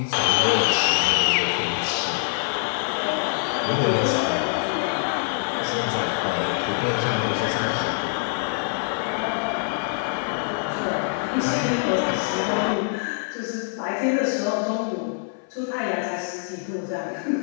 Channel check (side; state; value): right; silent; 57 dB below the other